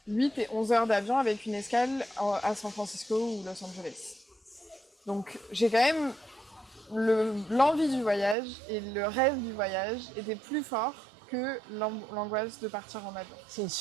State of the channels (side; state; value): left; drops out; at 8.3 s